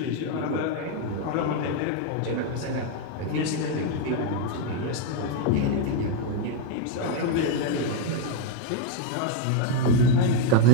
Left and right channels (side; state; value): both; different; correlation 0.00